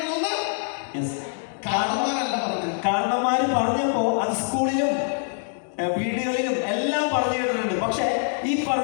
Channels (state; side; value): silent; right; digital silence